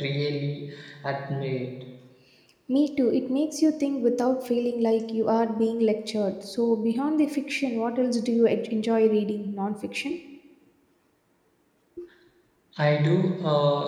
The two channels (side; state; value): both; identical; correlation 1.00